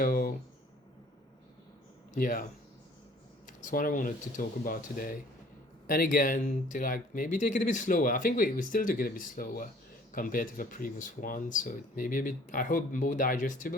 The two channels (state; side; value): normal; both; correlation 0.54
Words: yeah, that's what I wanted to talk about today. And again, to like maybe take it a bit slower. I think we still took it a bit slower compared to the previous one, so it may be a bit, I hope, more